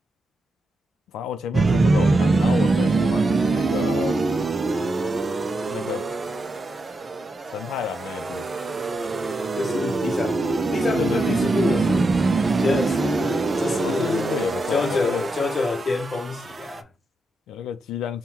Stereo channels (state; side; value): normal; both; correlation 0.85